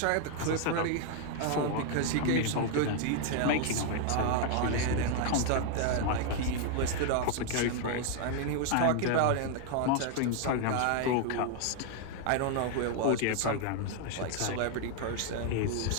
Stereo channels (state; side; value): different; both; correlation 0.00